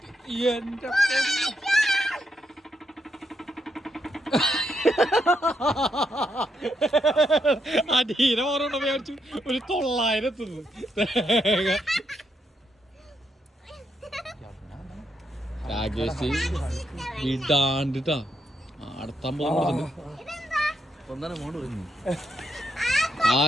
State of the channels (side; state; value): both; normal; correlation 0.79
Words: എന്റെ അടീനെ ഓരോണ്ട് മേടിച്ചു. ഒരു 900 രാകേഷ് വിടാണ്ടിട്ടാ അടുത്താൻ പോകുന്നു.